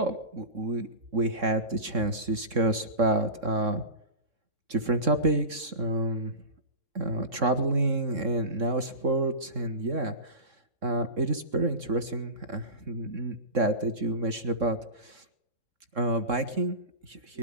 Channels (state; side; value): late; left; 3.7 ms